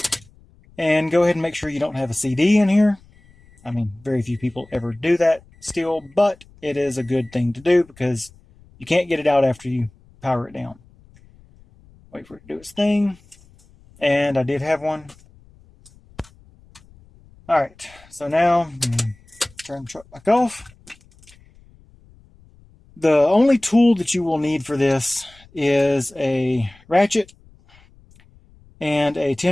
and go ahead and make sure you don't have a CD in here. I mean, very few people ever do that still, but it is a good thing to do because you can't get it out after you power it down. Wait for it to do its thing. And I did have one. Alright, so now turn the truck back off. The only tool that you will need for this is a ratchet and a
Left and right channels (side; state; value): left; noise; rumble, 27 dB below the sound